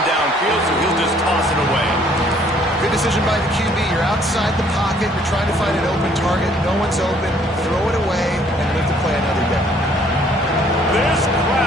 downfield, so he'll just toss it away. Good decision by the QB. You're outside the pocket. You're trying to find an open target. No one's open. Throw it away and live to play another day. This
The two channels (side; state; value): both; normal; correlation 0.62